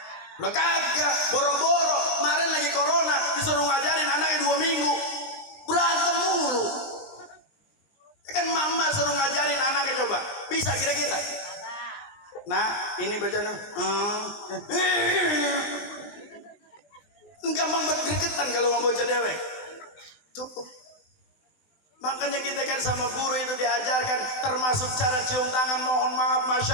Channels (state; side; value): late; right; 20 ms